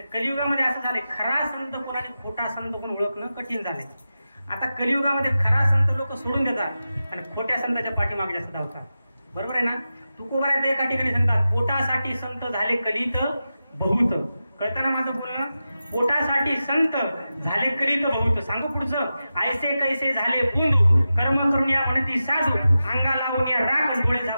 कलियुगामध्ये असं झालंय, खरा संत कोणाने खोटा संत कोण ओळखणं कठीण झालंय. आता कलियुगामध्ये खरा संत लोक सोडून देतात आणि खोट्या संतांच्या पाठीमागे जास्त धावतात. बरोबर आहे ना? तुकोबारायत एका ठिकाणी सांगतात, पोटासाठी संत झाले कलित बहुत. कळतं ना माझं बोलणं? पोटासाठी संत झाले कलित बहुत. सांगू पुढचं, ऐसे कैसे झाले बुंदू कर्म करून या म्हणती साधू अंगा लावून या राग डोळे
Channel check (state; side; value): inverted; both; correlation -0.92